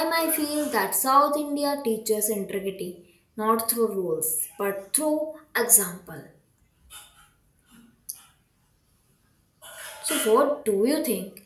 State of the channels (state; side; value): identical; both; correlation 1.00